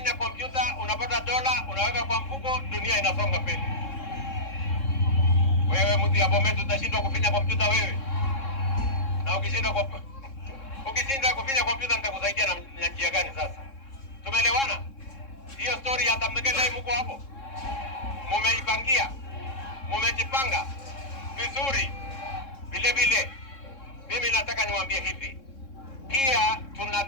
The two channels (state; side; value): late; right; 3.7 ms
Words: kompyuta, unapata dola, unaweka kwa mfuko, dunia inasonga mbele. Wewe mtu ya Bomet utashindwa kufinya kompyuta wewe. Na ukishinda kufinya kompyuta nitakusaidia na njia gani sasa? Tumeelewana? Hiyo story ya tamnegele mko hapo. Mumeipangia. Mumejipanga vizuri. Vile vile mimi nataka niwaambie hivi. Pia